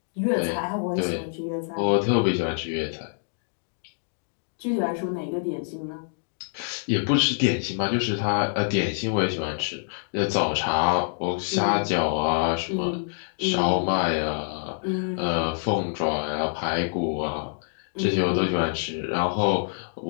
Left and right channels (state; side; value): silent; right; digital silence